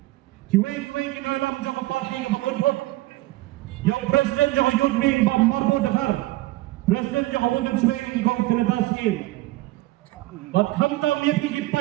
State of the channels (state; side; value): quieter; left; 18.3 dB